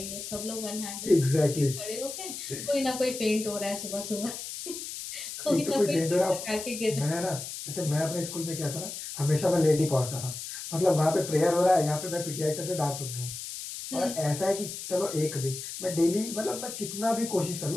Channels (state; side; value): noise; left; hiss, 8 dB below the sound